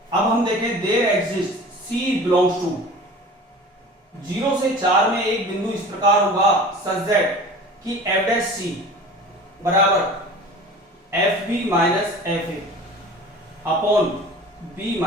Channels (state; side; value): normal; both; correlation 0.40